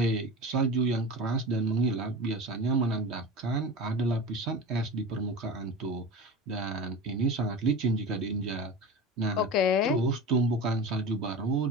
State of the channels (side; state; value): both; normal; correlation 0.30